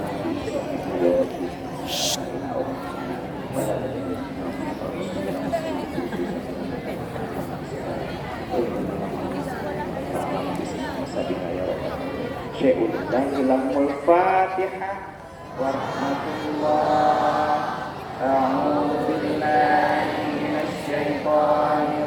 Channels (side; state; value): both; identical; correlation 1.00